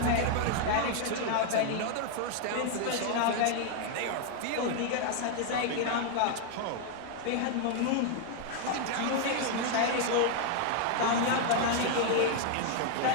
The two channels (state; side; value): different; both; correlation 0.00